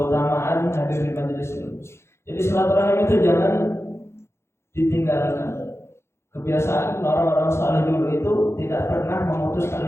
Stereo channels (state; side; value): late; right; 0.13 ms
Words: hadir di majelis ilmu. Jadi silaturahim itu jangan ditinggalkan. Kebiasaan orang-orang saleh dulu itu tidak pernah memutus